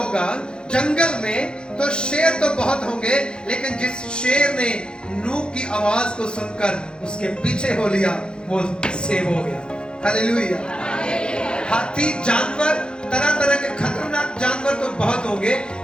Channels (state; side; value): late; right; 0.050 ms